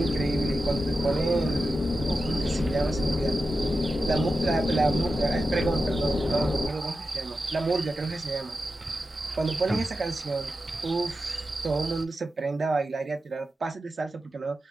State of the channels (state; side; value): normal; both; correlation 0.91